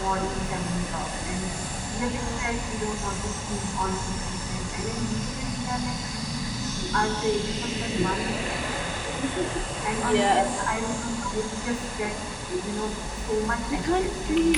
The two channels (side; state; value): both; identical; correlation 1.00